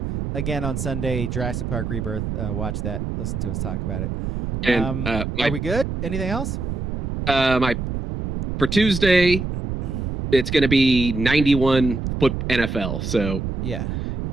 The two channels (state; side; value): noise; right; rumble, 4 dB below the sound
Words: again on Sunday, Jurassic Park Rebirth. Watch that. Listen to us talk about it. And are we good? Anything else? For Tuesday, it's going to be 91 foot NFL. So yeah,